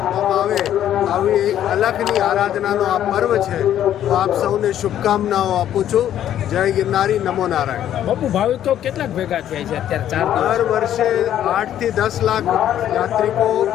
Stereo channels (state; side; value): quieter; right; 11.1 dB